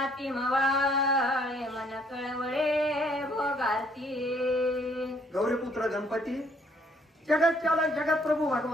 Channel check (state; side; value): normal; both; correlation 0.65